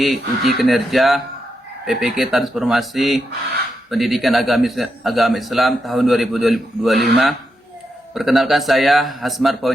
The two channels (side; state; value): both; normal; correlation 0.84